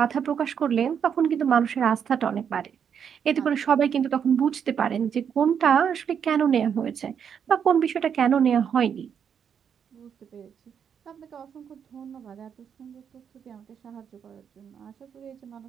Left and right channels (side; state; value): left; quieter; 7.7 dB